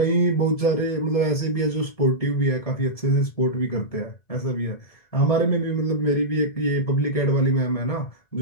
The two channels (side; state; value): right; late; 1.7 ms